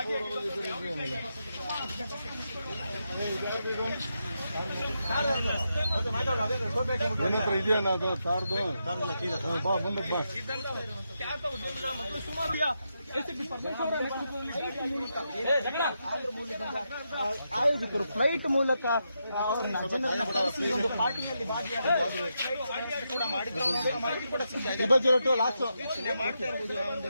ಇದೆಯಾ ಅದು ಕಾರ್ದು ಬಾ ಮುಂದಕ್ಕೆ ಬಾ. ಖ್ಯಾತ ಉದ್ಯಮಿಗಳ ಮತ್ತು ಸುಮಾರು ಎಸ್ಪಿ ಪರಮೇಶ್ವರ ಆಯೋಜಕರು ಫ್ಲೈಟ್ ಮೂಲಕ ಅವರನ್ನ ಜನರನ್ನ ಕರೆಸಿ ಒಂದು ಪಾರ್ಟಿಯಲ್ಲಿ ಕೂಡ ಮಾಹಿತಿ ಕೂಡ ಯೋಚನೆ ಮಾಡ್ತಾ ಇರಬಹುದು. ಒಂದು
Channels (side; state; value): both; inverted; correlation -0.84